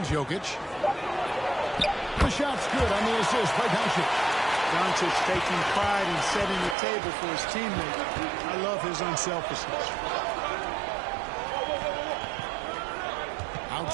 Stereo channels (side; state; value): left; drops out; at 6.8 s